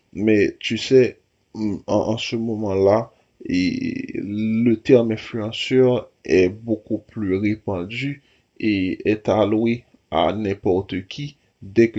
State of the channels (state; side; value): identical; both; correlation 1.00